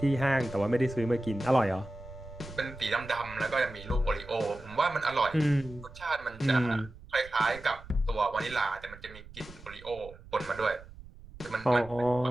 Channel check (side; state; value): right; noise; rumble, 18 dB below the sound